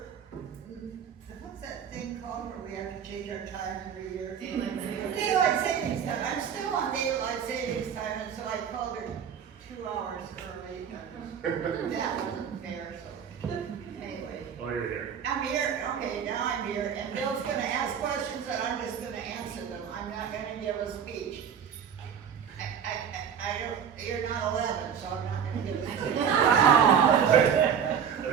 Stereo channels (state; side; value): quieter; left; 7.9 dB